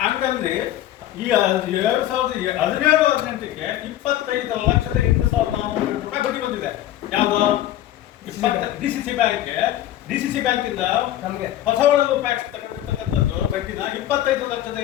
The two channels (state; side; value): quieter; right; 13.0 dB